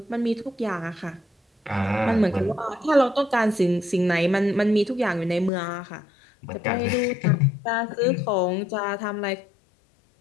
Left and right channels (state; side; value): drops out; right; at 5.5 s